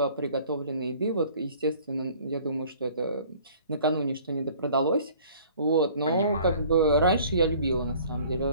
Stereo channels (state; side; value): inverted; both; correlation -0.52